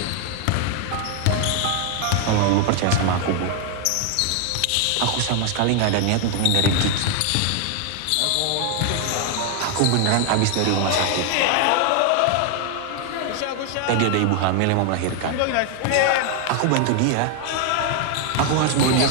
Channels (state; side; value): different; both; correlation 0.00